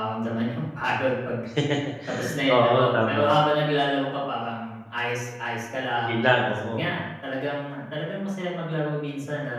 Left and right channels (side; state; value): both; identical; correlation 1.00